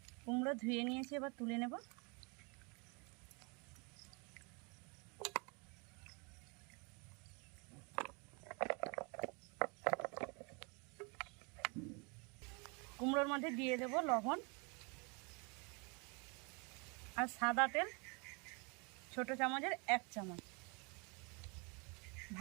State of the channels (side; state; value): left; quieter; 32.0 dB